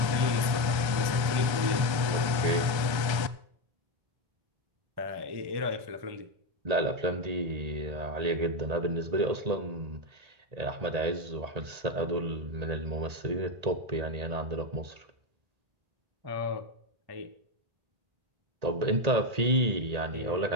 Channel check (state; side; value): late; left; 1.3 ms